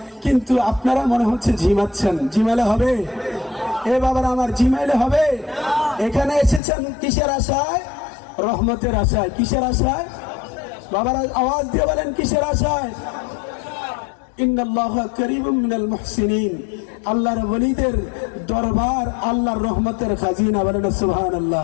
কিন্তু আপনারা মনে হচ্ছে ঝিমাচ্ছেন। জিমাইলে হবে? এ বাবার আমার, জিমাইলে হবে? এখানে এসেছেন কিসের আশায়? রহমতের আশায়। কিসের আশায়? বাবার আওয়াজ দিয়ে বলেন কিসের আশায়? ইন্নাল্লাহা করিবুম মিনাল মুহসিনিন। আল্লাহর ওলিদের দরবার আল্লাহর রহমতের খাজিনা। বলেন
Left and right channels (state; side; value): drops out; right; at 6.6 s